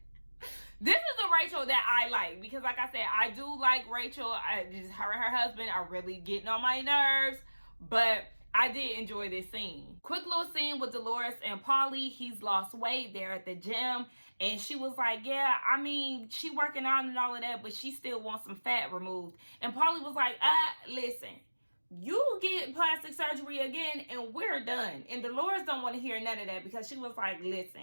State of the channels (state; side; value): inverted; both; correlation -1.00